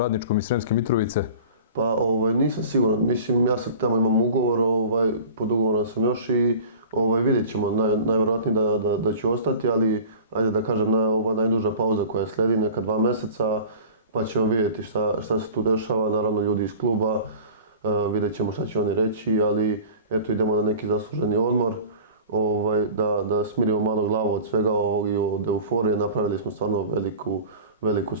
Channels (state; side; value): inverted; both; correlation -0.40